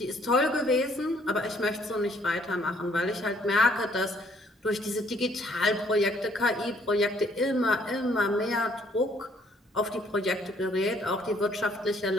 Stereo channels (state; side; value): normal; both; correlation 0.64